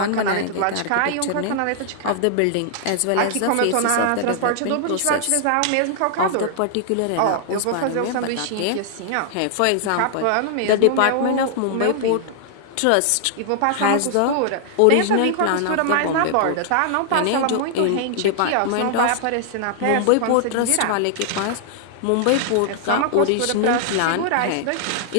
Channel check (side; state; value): both; different; correlation -0.01